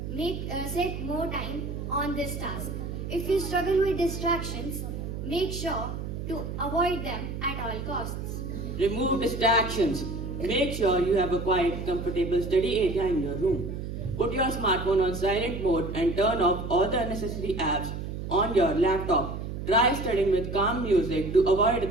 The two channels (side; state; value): right; noise; hum, 6 dB below the sound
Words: set more time on this task. If you struggle with distractions, make sure to avoid them at all costs. Remove distractions. Make sure you have a quiet, comfortable study area in your room. Put your smartphone on silent mode and turn off all the unnecessary apps on your laptop. Try studying with calm music to avoid